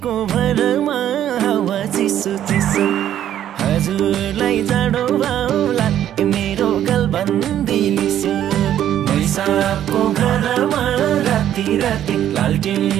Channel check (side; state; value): left; quieter; 11.1 dB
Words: भरमा हावा चिसो चिसो हजुरलाई जाडो भाउला मेरो गलबन्दी लिस्यो मैसाबको घरमा राति राति